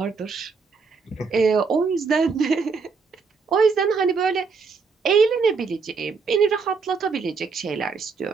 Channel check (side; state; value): left; quieter; 5.0 dB